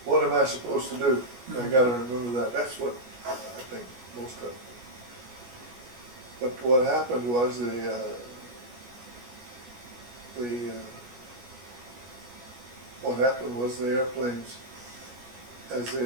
am I supposed to do? I gotta remember that. That's what I think most of them. But what happened was what happened was the airplanes,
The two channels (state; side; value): late; left; 16 ms